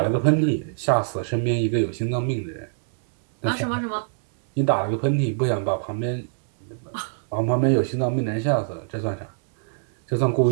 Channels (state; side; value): silent; left; 63 dB below the other